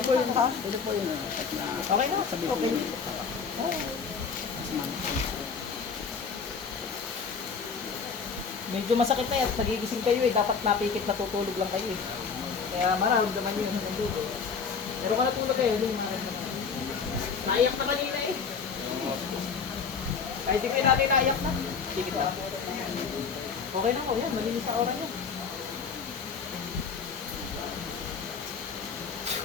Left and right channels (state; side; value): quieter; right; 5.7 dB